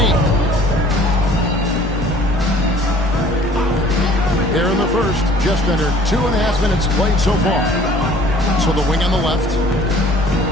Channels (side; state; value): both; normal; correlation 0.52